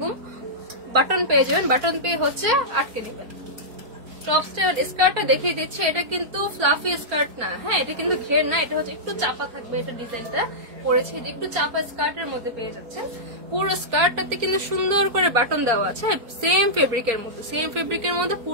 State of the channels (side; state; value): left; late; 4.4 ms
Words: বাটন পেয়ে যাবেন, বাটন পেয়ে হচ্ছে আটকে দিবেন। টপসটা স্কার্টটা দেখিয়ে দিচ্ছি, এটা কিন্তু ফ্লাফি স্কার্ট না। হ্যাঁ, এটা কিন্তু ঘের না, এটা হচ্ছে একটু চাপা থাকবে। এটা ডিজাইনটা করেছে একটু চাপা স্কার্টের মধ্যে পেয়ে যাচ্ছেন। পুরো স্কার্টটাতে কিন্তু সুন্দর করে বাটন দেওয়া আছে, সেম ফেব্রিকের মধ্যে